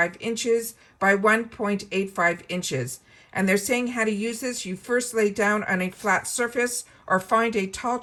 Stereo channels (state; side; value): identical; both; correlation 1.00